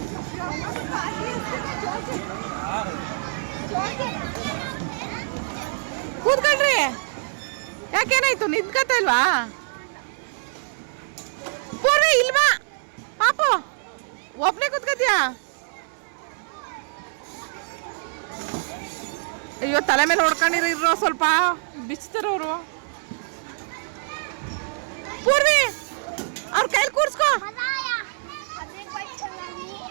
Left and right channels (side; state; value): left; silent; 62 dB below the other